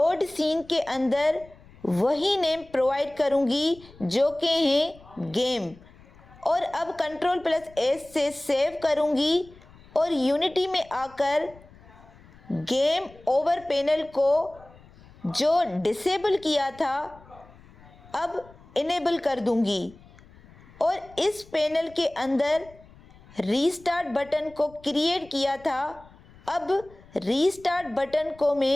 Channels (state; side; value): noise; left; rumble, 24 dB below the sound